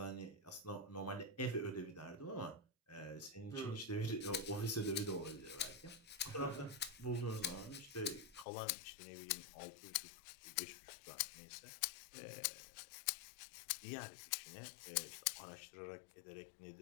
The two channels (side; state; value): right; drops out; at 8.5 s